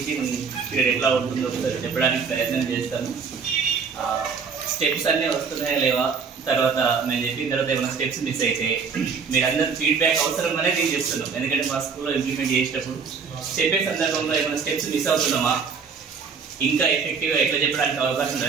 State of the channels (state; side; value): quieter; left; 5.7 dB